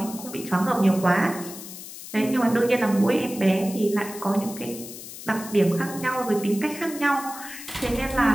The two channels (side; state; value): left; noise; hiss, 13 dB below the sound